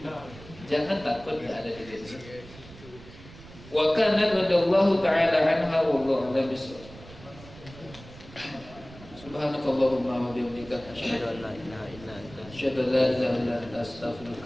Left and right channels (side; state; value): right; noise; rumble, 18 dB below the sound